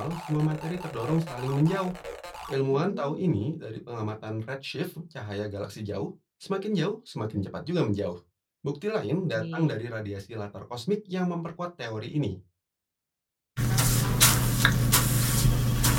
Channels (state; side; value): identical; both; correlation 1.00